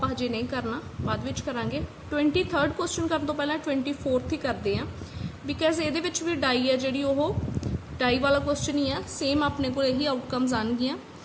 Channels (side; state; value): both; identical; correlation 1.00